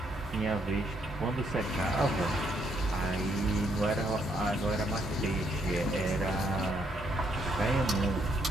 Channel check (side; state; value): both; normal; correlation 0.73